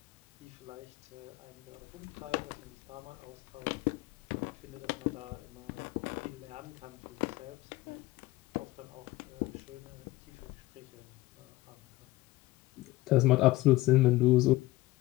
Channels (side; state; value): right; quieter; 18.8 dB